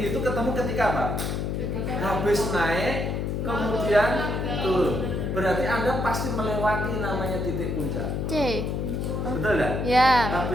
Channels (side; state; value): left; noise; hum, 1 dB below the sound